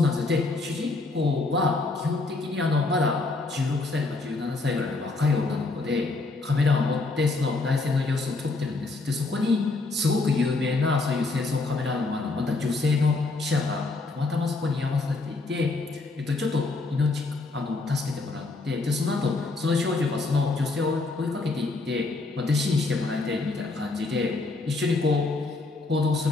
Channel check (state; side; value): quieter; right; 3.4 dB